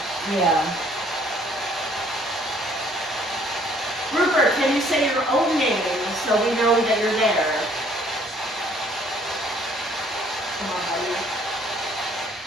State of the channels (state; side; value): normal; both; correlation 0.60